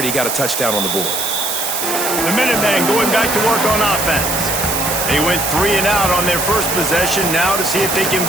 got a touchdown on the board. The Minutemen going back to work on offense. They went 3 and out on their first possession. Now to see if they can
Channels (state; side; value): noise; right; hiss, 2 dB below the sound